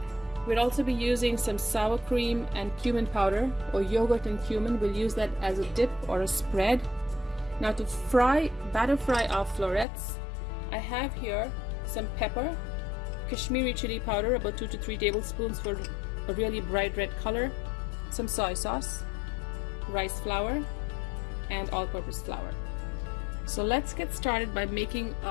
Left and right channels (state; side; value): drops out; right; at 9.9 s